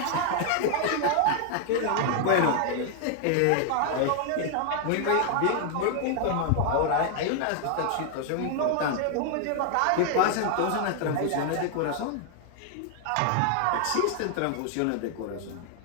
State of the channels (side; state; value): both; different; correlation 0.00